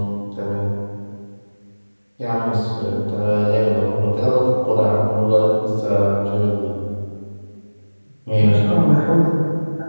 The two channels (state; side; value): inverted; both; correlation -1.00